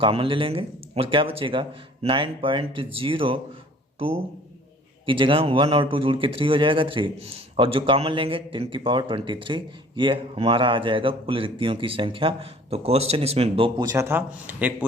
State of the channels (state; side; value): normal; both; correlation 0.51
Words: ले लेंगे और क्या बचेगा? 9.02 की जगह 1 और 2 जुड़ के 3 हो जाएगा 3, और जो कॉमन लेंगे 10⁻23, ये हमारा आ जाएगा कुल रिक्तियों की संख्या। तो क्वेश्चन इसमें दो पूछा था। एक